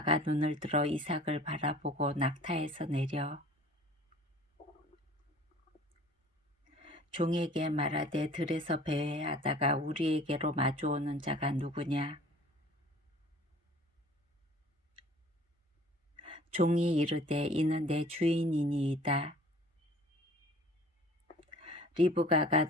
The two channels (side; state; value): both; normal; correlation 0.48